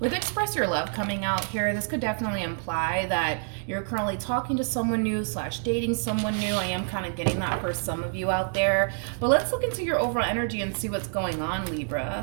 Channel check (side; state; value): left; silent; digital silence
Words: Express Your Love coming out here, this could definitely imply that you're currently talking to someone new / dating someone new. I am kind of getting that for some of you out there. But let's look into your overall energy and see what's going on,